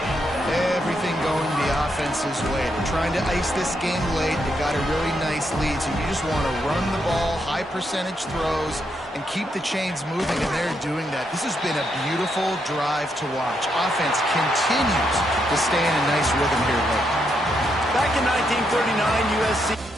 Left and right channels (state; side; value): normal; both; correlation 0.79